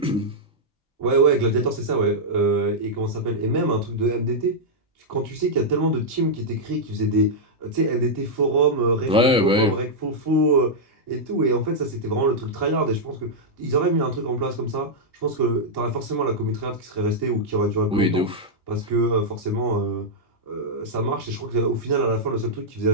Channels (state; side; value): normal; both; correlation -0.06